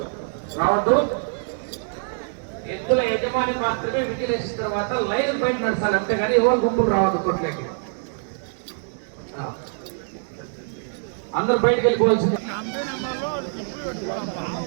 రావద్దు. ఎద్దుల యజమాని మాత్రమే విజిలేసిన తర్వాత లైన్ బయట నడచాలి, అంతేగాని ఎవరు గుంపులు రావద్దు కొట్లకి. అందరు బయటకు వెళ్ళిపోవాల్సింది.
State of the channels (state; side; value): silent; left; digital silence